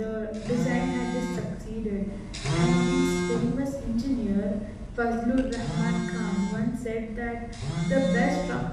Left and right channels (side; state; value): both; identical; correlation 1.00